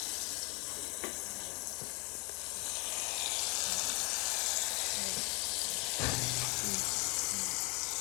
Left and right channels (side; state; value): right; quieter; 29.9 dB